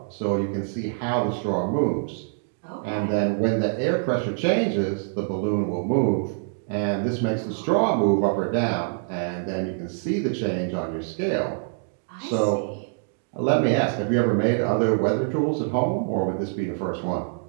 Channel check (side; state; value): left; silent; digital silence